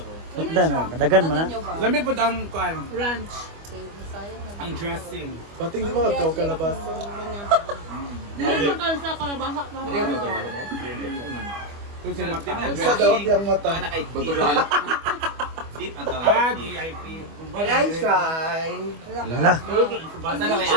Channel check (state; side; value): late; left; 25 ms